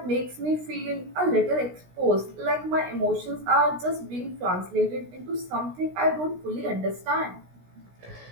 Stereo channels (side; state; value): left; late; 16 ms